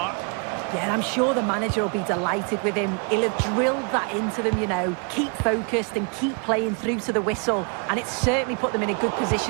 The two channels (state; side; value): quieter; left; 36.3 dB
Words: Yeah, I'm sure the manager will be delighted with him. He'll have drilled that into them, you know. Keep focused and keep playing through to the whistle. And it's certainly put them in a good